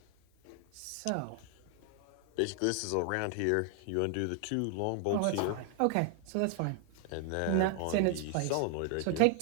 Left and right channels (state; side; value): different; both; correlation 0.00